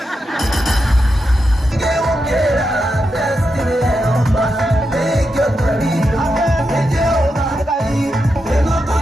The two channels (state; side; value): normal; both; correlation 0.86